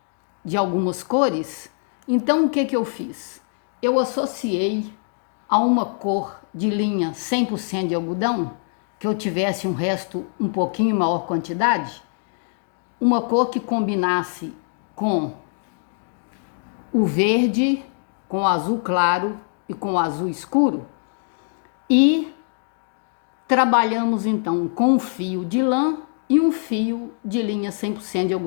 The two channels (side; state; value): right; silent; 63 dB below the other